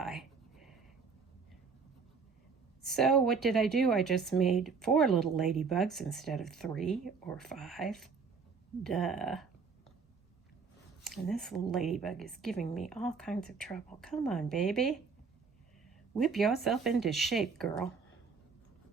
So what did I do? I just made 4 little ladybugs instead of 3 or 5. Duh. And this little ladybug is giving me all kinds of trouble. Come on, baby. Whip yourself into shape, girl.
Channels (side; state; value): left; quieter; 5.3 dB